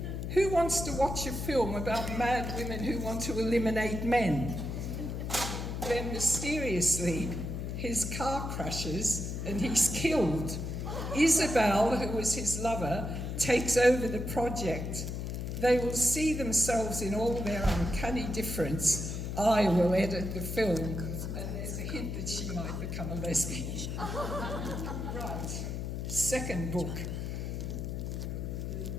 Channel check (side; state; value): left; noise; hum, 4 dB below the sound